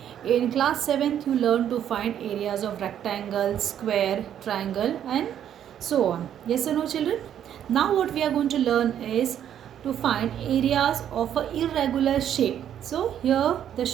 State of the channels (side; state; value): left; quieter; 10.0 dB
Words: In class 7th you learned to find areas of rectangle, square, triangle and so on. Yes or no children? Now what we are going to learn is to find areas of a irregular shape. So here the